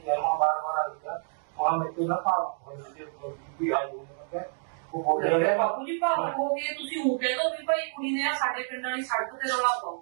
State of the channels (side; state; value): left; silent; 59 dB below the other